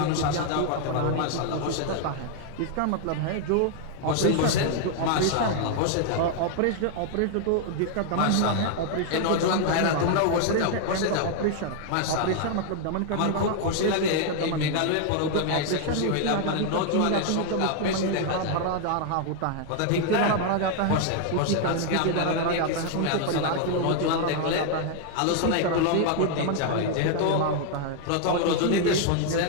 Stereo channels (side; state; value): both; different; correlation 0.00